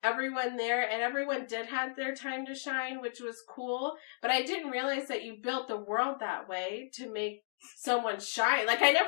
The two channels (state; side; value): silent; right; digital silence